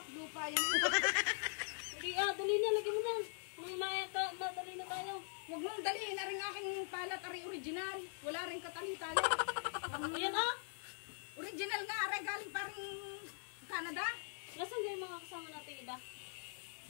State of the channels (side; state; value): right; silent; digital silence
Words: Lupa yan. Hindi dali na. Lagyan mo na. May madali na tayo. Huwag mong daliin. Aring aking palat, ari original. Wala rin katali-tali. Ayan ah. Original nga, aray galing pa rin Canada. Nasaan kayo mga kasama natin iba?